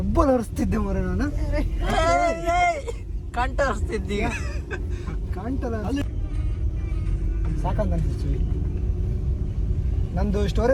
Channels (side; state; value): both; identical; correlation 1.00